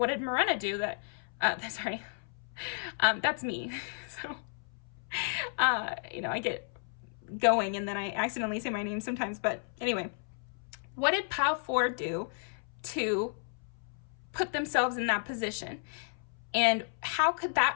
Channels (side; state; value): right; silent; 56 dB below the other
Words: did Morena do that, sorry, that's me. So, you know, I get going and then I accidentally say my name sometimes, but anyway, what did Pile 4 do to put themselves in that position? And how could